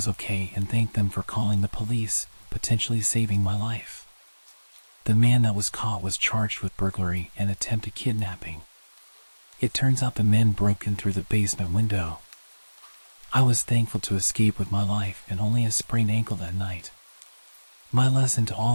okay and thanked them for calling the police, potentially saving my life. The man that was caught was charged with burglary and attempted kidnapping. It turns out the men broke in through the basement window. I was thankful to escape with my life and only a sprained ankle that night. My lesson to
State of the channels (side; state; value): both; inverted; correlation -1.00